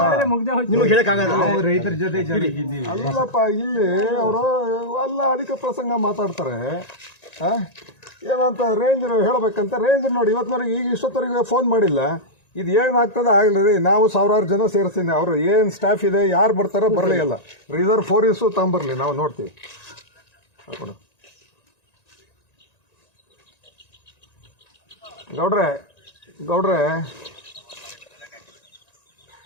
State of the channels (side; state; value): right; late; 1.9 ms